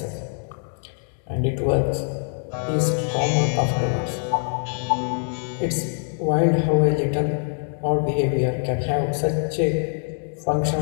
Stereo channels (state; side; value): silent; right; 63 dB below the other